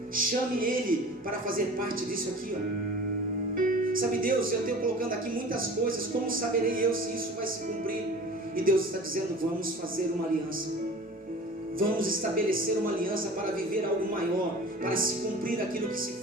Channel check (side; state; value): both; normal; correlation 0.41